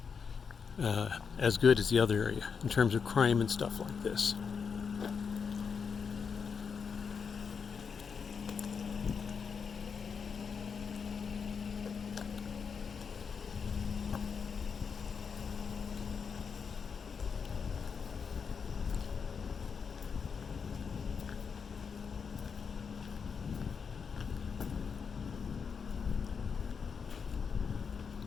as good as the other area in terms of crime and stuff like this.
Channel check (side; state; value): right; quieter; 6.0 dB